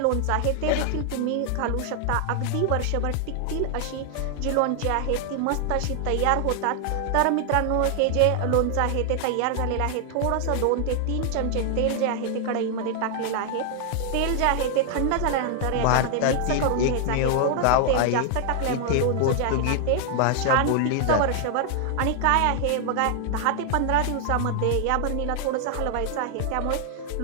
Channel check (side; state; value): both; different; correlation 0.00